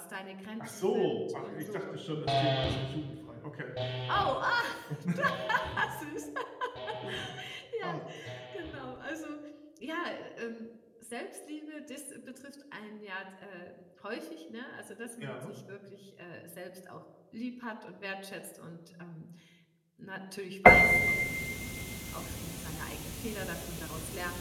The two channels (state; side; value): identical; both; correlation 1.00